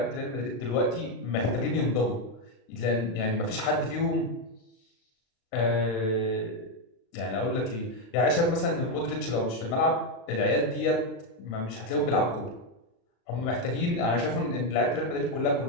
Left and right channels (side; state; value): right; late; 36 ms